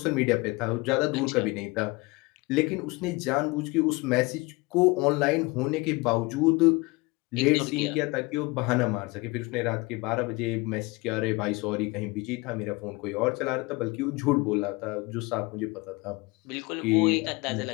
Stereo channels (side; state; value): right; quieter; 24.7 dB